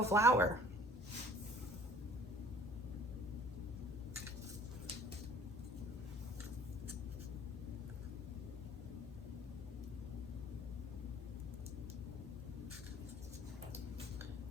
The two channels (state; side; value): normal; both; correlation 0.51